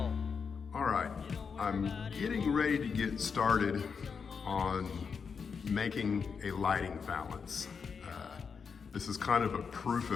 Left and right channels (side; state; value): right; quieter; 5.9 dB